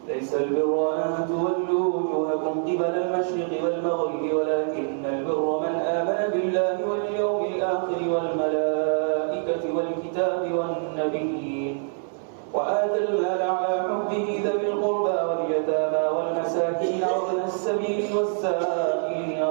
ليس البر أن تولوا وجوهكم قبل المشرق والمغرب ولكن البر من آمن بالله واليوم الآخر والملائكة والكتاب والنبيين وآتى المال على حبه ذوي القربى واليتامى والمساكين وابن السبيل والسائلين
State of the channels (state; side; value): silent; left; 60 dB below the other